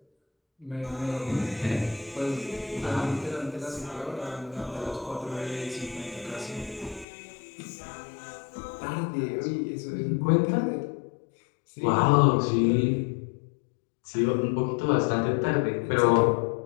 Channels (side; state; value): right; drops out; at 7.1 s